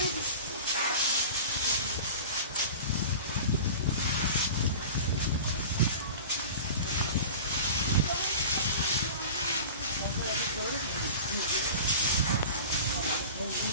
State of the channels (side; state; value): both; inverted; correlation -0.37